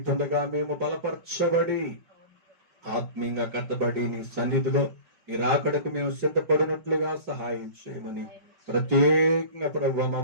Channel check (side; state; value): left; late; 5.3 ms